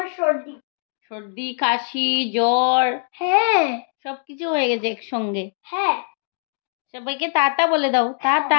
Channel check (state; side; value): silent; right; digital silence